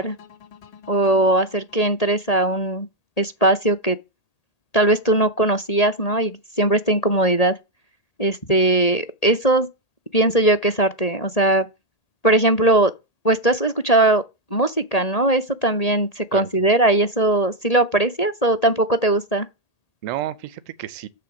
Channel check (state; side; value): late; right; 1.8 ms